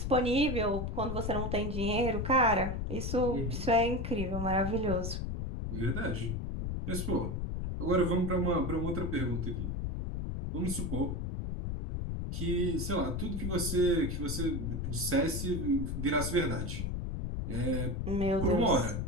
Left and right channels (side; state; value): left; noise; rumble, 2 dB below the sound